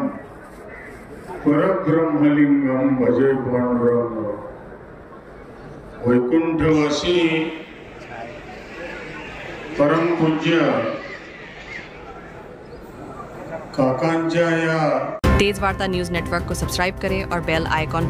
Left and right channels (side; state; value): both; identical; correlation 1.00